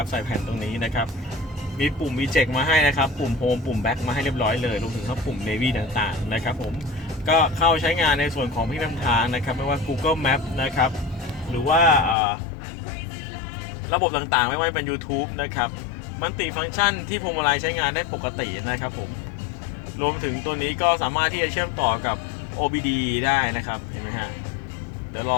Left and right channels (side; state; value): right; drops out; at 12.2 s